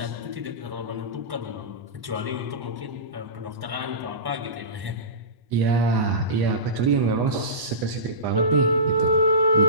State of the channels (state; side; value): late; left; 1.0 ms